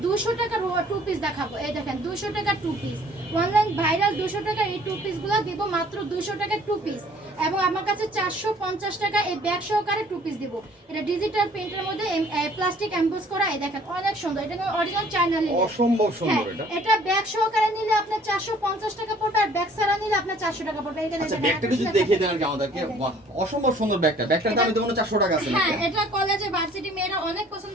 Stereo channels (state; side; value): normal; both; correlation 0.55